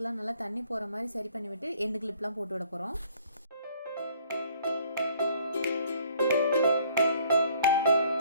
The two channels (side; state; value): both; inverted; correlation -0.58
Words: நல்லா தண்ணி போகிற மாதிரி சரி பண்ணி விட்டு எண்டு கிளிப்லாம் போட்டு விட போகிறோம்.